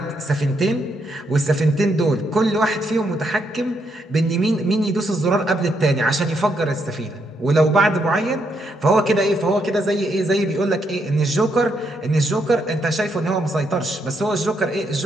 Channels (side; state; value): both; normal; correlation 0.77